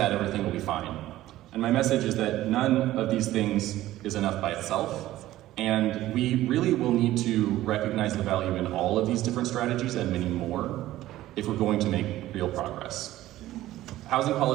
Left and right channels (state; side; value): quieter; left; 15.1 dB